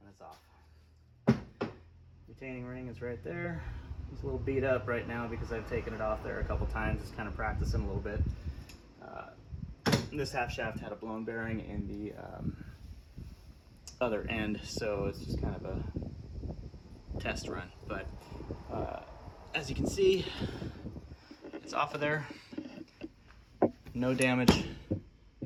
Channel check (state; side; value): identical; both; correlation 1.00